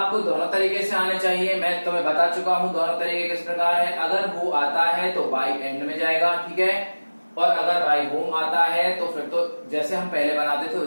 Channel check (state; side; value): inverted; both; correlation -1.00